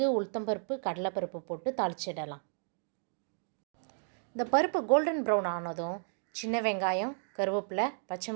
உளுத்தம்பருப்பு, கடலைப்பருப்பு போட்டு தாளிச்சிடலாம். இந்த பருப்பு கோல்டன் ப்ரௌன் ஆனதும் சின்ன வெங்காயம், கருவேப்பிலை, பச்சை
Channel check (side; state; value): left; silent; digital silence